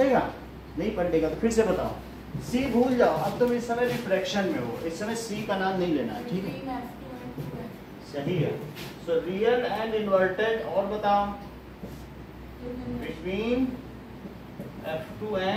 नहीं पलटेगा। तो फिर से बताओ, C भूल जाओ, अब तुम इस समय रिफ्रैक्शन में हो, इस समय C का नाम नहीं लेना है, ठीक है? सही है। सो रियल एंड इन्वर्टेड, और बताओ बिटवीन F2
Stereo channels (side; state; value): both; identical; correlation 1.00